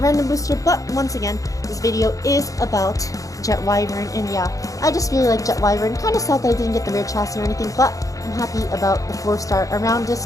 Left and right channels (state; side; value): late; right; 0.16 ms